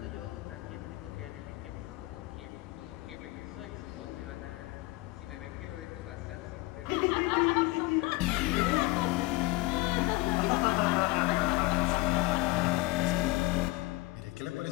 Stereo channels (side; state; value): right; quieter; 21.8 dB